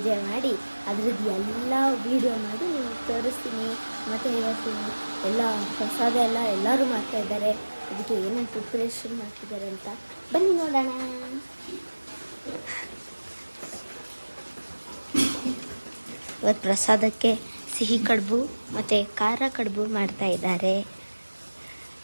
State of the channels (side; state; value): both; inverted; correlation -1.00